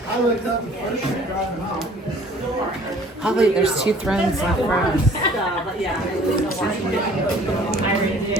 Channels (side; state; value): both; normal; correlation 0.53